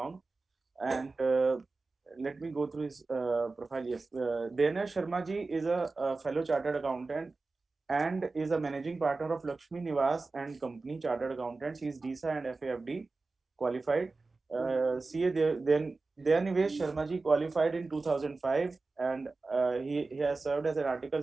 And let me go through his profile. Yes, Dana Sharma ji is a fellow chartered accountant and is a managing partner of Lakshmi Niwas and Company Chartered Accountants. He is DISA and FAFD qualified. CA then Dayanivesh Sharma ji qualified in 2005, and he has served as an article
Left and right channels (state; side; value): quieter; left; 3.7 dB